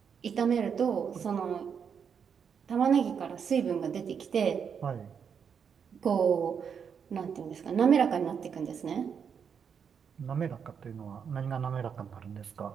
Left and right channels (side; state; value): left; quieter; 7.0 dB